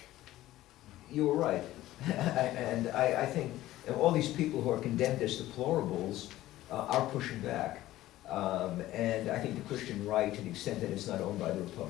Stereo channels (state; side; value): quieter; right; 15.4 dB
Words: You were right. And I think all these people who are condemned as deplorables are pushing back. And I think the Christian right, to the extent that it's not owned by the